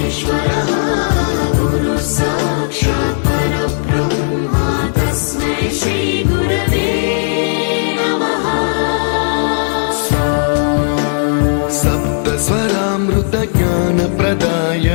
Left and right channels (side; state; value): right; silent; digital silence